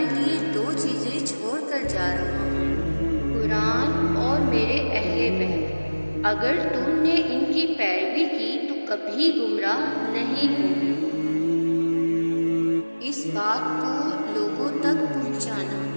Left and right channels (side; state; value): both; inverted; correlation -1.00